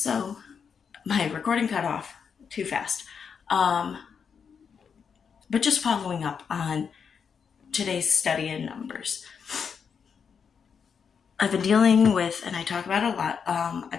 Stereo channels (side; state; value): right; quieter; 6.5 dB